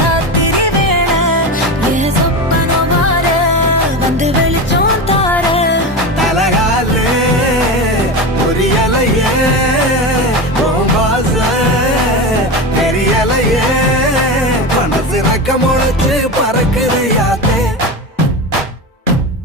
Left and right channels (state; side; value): normal; both; correlation 0.22